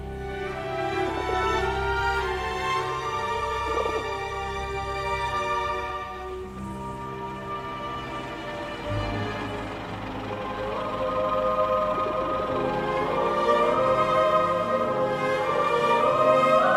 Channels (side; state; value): both; identical; correlation 1.00